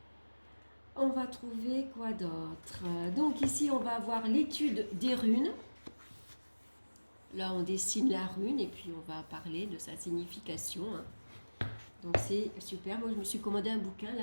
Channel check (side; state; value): both; inverted; correlation -1.00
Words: On va trouver quoi d'autre? Donc ici, on va avoir l'étude des runes. Là, on dessine la rune et puis on va parler de sa signification. Donc c'est super. Moi, je me suis commandé un bouquin,